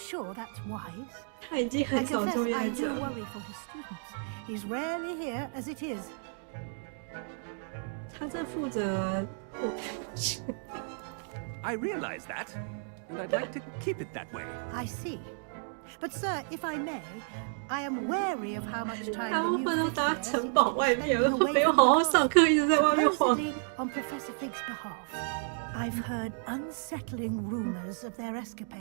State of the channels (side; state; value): left; silent; 57 dB below the other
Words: that's wise? 他已经很少出 I 现 do 这。 worry for his students. He's rarely here as it is. 他在负责。I realize that, and I'd like to keep it that way. I see. But, sir, if I may, I am wary of how much time 大 the 部 new 分都 fifth 待 year 城 seems 堡 to be 外面， spending away 没有 from 好好 the 上课，一直在外面晃。 Supposedly, on Professor Fig's behalf, I've heard unsettling rumors of their